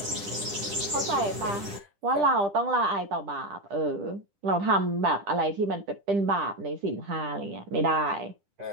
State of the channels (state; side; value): late; left; 10 ms